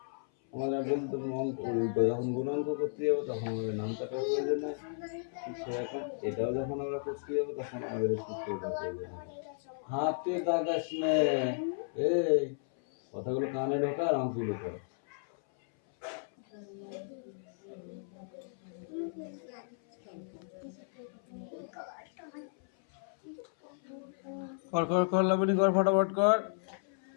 আমরা বলতে যখন গুণাঙ্ক করতে যাবো তখন আমাদের নামটাকার প্রয়োজন হয়, ঠিক সেরকম এটাও যখন আমরা করতে যাবো তখন আমাদের সূত্রটা প্রয়োজন হয়। হাতে দাগাস নে, এই কথাগুলো কানে ঢোকা আর অঙ্কগুলো কর। কর কর কর লাবণী কর, ফটাফট কর।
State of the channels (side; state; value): right; silent; 55 dB below the other